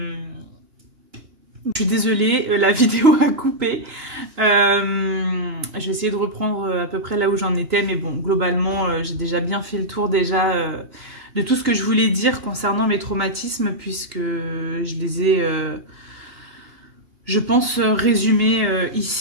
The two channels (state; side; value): late; left; 2.8 ms